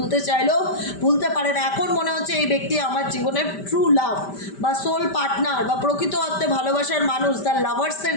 চাইলেও ভুলতে পারে না। এখন মনে হচ্ছে এই ব্যক্তি আমার জীবনের ট্রু লাভ বা সোল পার্টনার বা প্রকৃত অর্থে ভালোবাসার মানুষ, তার লাভার্সের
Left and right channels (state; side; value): late; right; 5.1 ms